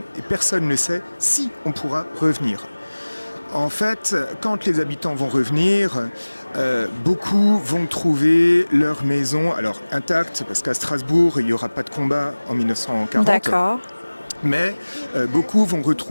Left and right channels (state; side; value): inverted; both; correlation -1.00